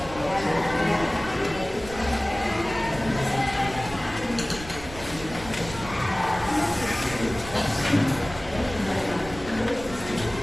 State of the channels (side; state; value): right; noise; rumble, 14 dB below the sound